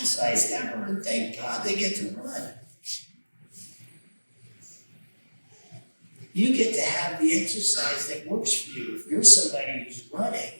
ever, and thank God they get to run. You get to have the exercise that works for you. If you're somebody who's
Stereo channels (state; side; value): inverted; both; correlation -1.00